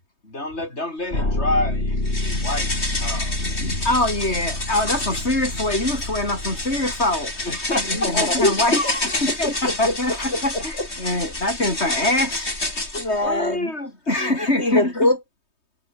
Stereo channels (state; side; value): late; right; 3.2 ms